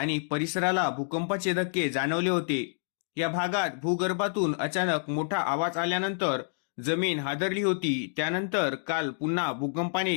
परिसराला भूकंपाचे धक्के जाणवले होते. या भागात भूगर्भातून अचानक मोठा आवाज आल्यानंतर जमीन हादरली होती. त्यानंतर काल पुन्हा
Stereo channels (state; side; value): silent; right; digital silence